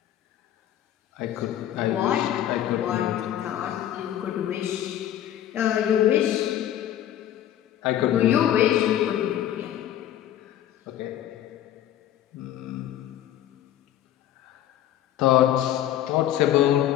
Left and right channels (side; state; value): right; quieter; 11.7 dB